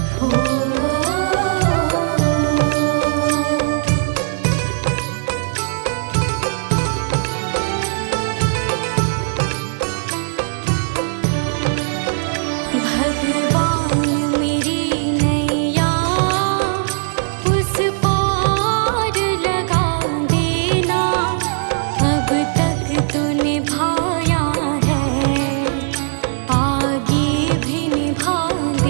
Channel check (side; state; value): left; silent; 67 dB below the other